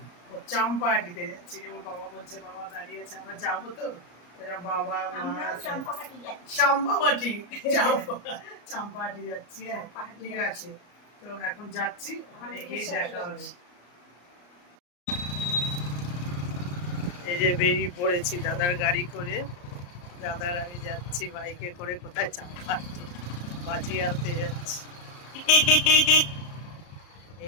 ও চাম্পাহাটিতে যাচ্ছি। যেমন বাবা বলছে, বাবা দাঁড়িয়ে আছে, আমরা যাবো তো। বাবা চাম্পাহাটি চাম্পাহাটি যাচ্ছি। হ্যাঁ, ঠিক আছে। তো এখন যাচ্ছি, ওখানে গিয়ে দেখা হবে। এই যে বেরিয়ে পড়েছি দাদার গাড়ি করে। দাদার আমি যাচ্ছি বাইকে করে। কোথায়? চাম্পাহাটি বাজি আনতে যাচ্ছি। এই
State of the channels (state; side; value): late; right; 34 ms